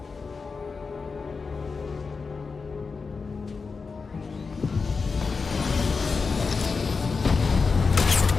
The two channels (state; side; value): quieter; right; 4.7 dB